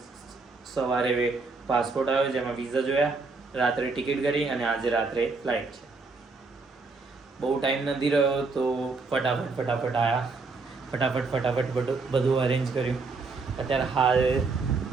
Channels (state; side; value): quieter; left; 4.0 dB